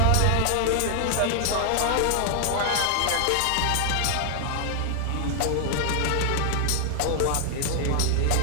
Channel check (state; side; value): different; both; correlation 0.00